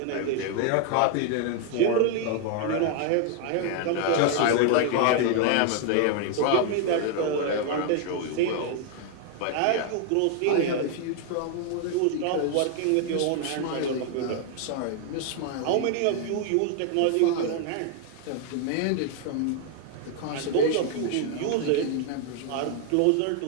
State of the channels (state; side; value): different; both; correlation 0.00